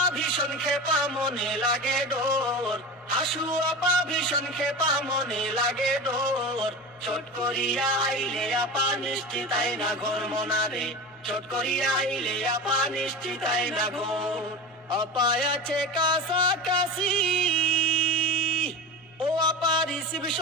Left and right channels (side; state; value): both; normal; correlation 0.28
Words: ভীষণ খেপা মনে লাগে ডোর, হাসু আপা ভীষণ খেপা মনে লাগে ডোর। চট করিয়া আইলে আপা নিশ্চিতাই না ঘর মনারে, চট করিয়া আইলে আপা নিশ্চিতাই না ঘর। আপা আছে কাছাকাছি, ও আপা